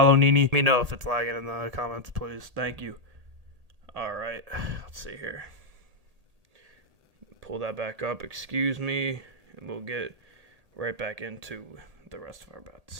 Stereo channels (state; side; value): late; left; 1.8 ms